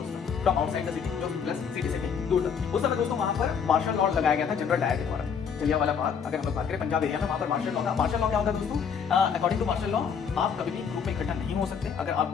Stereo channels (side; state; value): right; quieter; 6.8 dB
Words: था फ्रॉम आउटसाइड द सिटी, जो प्लस सिटी से भी दूर था। उस समय दोस्तों वहां पर मार्शल लॉ लगाया गया था जनरल डायर के द्वारा। जलियांवाला बाग अगर हम लोग बात करें पंजाब एरिया में, वहां पर मार्शल लॉ था। मार्शल लॉ क्या होता है दोस्तों, अकॉर्डिंग टू मार्शल लॉ आप कभी भी ग्रुप में इकट्ठा नहीं हो सकते। अगर आप